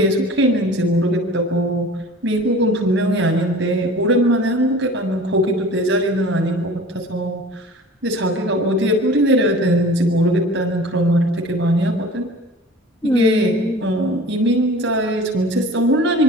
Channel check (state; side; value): normal; both; correlation 0.42